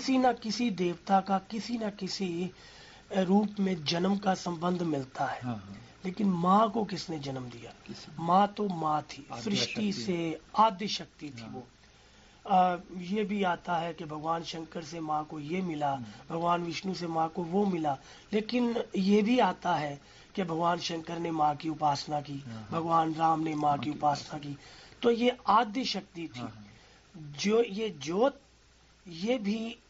न किसी देवता का किसी न किसी रूप में जन्म का संबंध मिलता है। हाँ, हाँ, लेकिन माँ को किसने जन्म दिया? किसी माँ तो माँ थी, आद्य सृष्टि शक्ति। से आद्य शक्ति थी हाँ। वो। ये भी आता है कि भगवान शंकर से माँ को ये मिला, भगवान विष्णु से माँ को वो मिला, लेकिन ये भी आता है कि भगवान शंकर ने माँ की उपासना की, भगवान राम ने माँ की उपासना की। तो ये आद्य शक्ति थी। हाँ, जो ये ज्योत, ये भी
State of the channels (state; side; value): identical; both; correlation 1.00